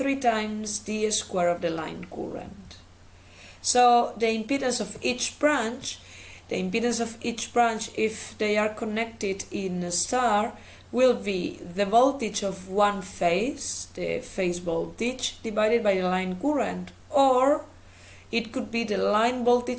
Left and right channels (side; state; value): both; identical; correlation 1.00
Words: times the square of the line current. So the impedance of each branch, if they are connected in a star, will be the voltage of one phase, the phase voltage, divided by the line current, or it could be the line